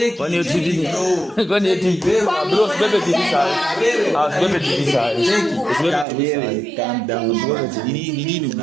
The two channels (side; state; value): left; drops out; at 6.1 s